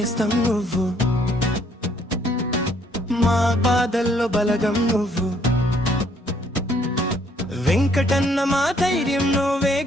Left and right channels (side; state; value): both; normal; correlation 0.66